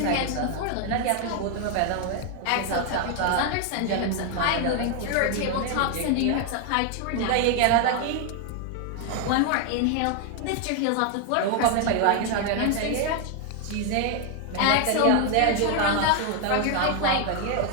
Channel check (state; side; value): different; both; correlation 0.01